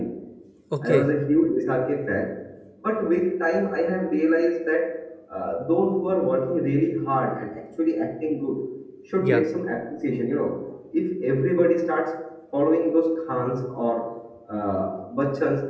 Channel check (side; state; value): both; identical; correlation 1.00